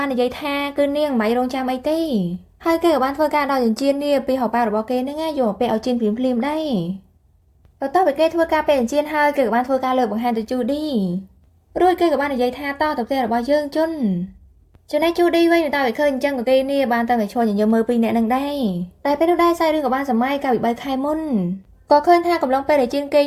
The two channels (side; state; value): both; identical; correlation 1.00